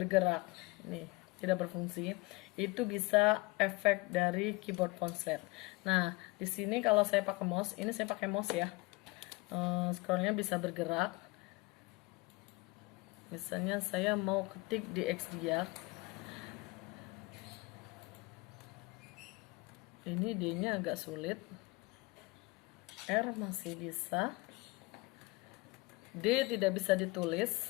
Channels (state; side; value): quieter; right; 24.1 dB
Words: nih tidak berfungsi. Itu bisa efek dari keyboard konslet. Nah di sini kalau saya pakai mouse, ini saya pakai mouse ya, scrollnya bisa bergerak. Misalnya saya mau ketik di Xdiag, ini D nya agak sulit, R masih bisa, D tidak bisa